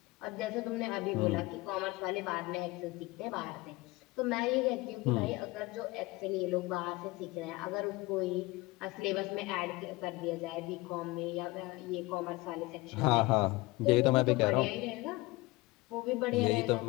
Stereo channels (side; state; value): right; quieter; 21.9 dB